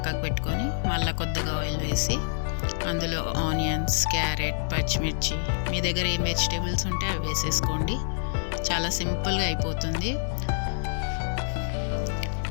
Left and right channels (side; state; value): right; silent; digital silence